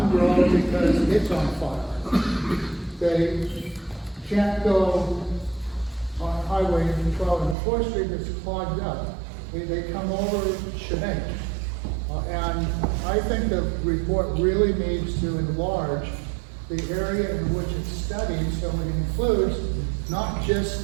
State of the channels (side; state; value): left; drops out; at 7.6 s